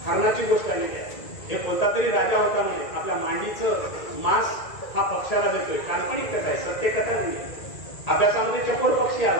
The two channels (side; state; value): right; late; 1.8 ms